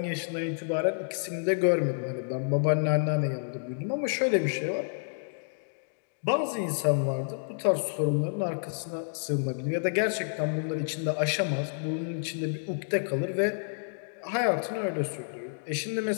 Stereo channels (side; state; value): right; silent; digital silence